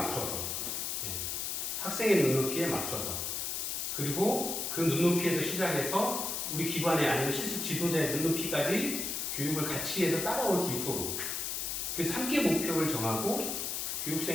학생의 눈높이에 맞춰서, 그리고 그 눈높이에서 시작해서 우리 기관에 아니면 실습 지도자의 눈높이까지 교육을 같이 해서 따라올 수 있도록 그래서 함께 목표를 정하고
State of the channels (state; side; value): noise; left; hiss, 2 dB below the sound